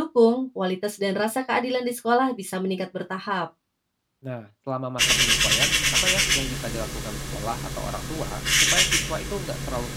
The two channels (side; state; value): both; identical; correlation 1.00